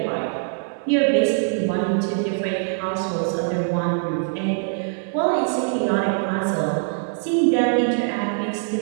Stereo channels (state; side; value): silent; left; 60 dB below the other